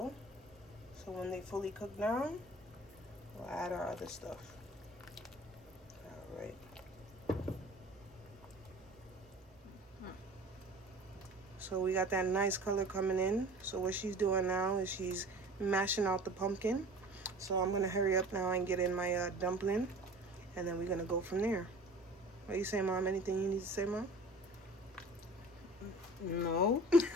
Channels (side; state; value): both; normal; correlation 0.43